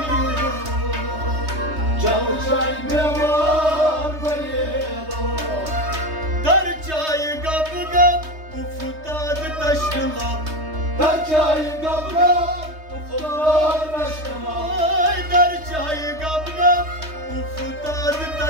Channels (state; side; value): late; left; 3.2 ms